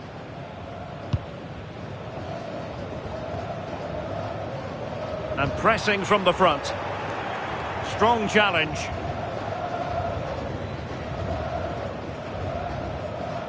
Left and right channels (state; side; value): identical; both; correlation 1.00